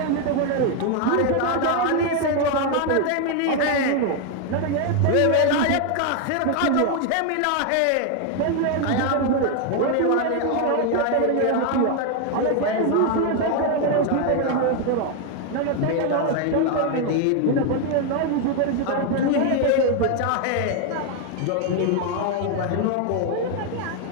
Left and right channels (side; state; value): both; different; correlation 0.01